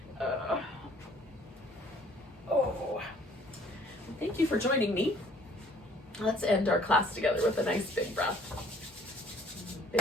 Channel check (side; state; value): both; normal; correlation 0.58